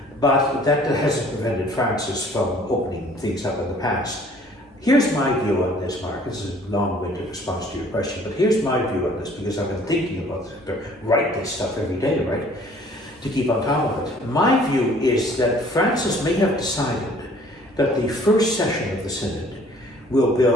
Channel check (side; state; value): both; normal; correlation 0.55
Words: but that hasn't prevented Francis from opening things up in the past. Here's my view on this, Mark. This is a long-winded response to your question, but here's my view on this, because I've been thinking about it, write this stuff every day, right, to keep on top of it. My view is that Francis may have decided that the first session of the Synod will